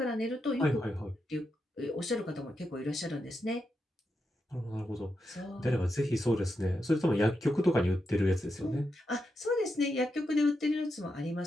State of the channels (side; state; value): both; normal; correlation 0.85